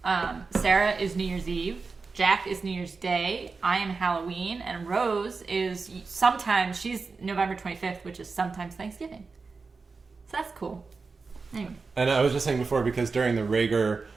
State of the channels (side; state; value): left; quieter; 4.4 dB